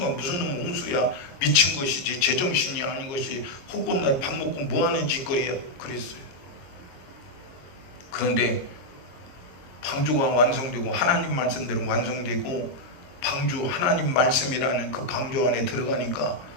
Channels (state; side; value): late; right; 22 ms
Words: 무슨 놈 홍수야, 미친 것이지 제정신이 아닌 것이 헛것날 밥 먹고 뭐하는 짓거리야 그랬어요. 그런데 방주가 완성되고 하나님 말씀대로 완성되고 방주 하나님 말씀이라는 그 방주 안에 들어가니까